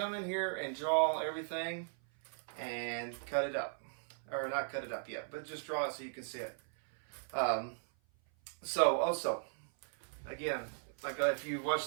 in here and draw everything and cut it up. Or not cut it up yet, but just draw it so you can see it. So also, again, like if you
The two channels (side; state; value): left; silent; 53 dB below the other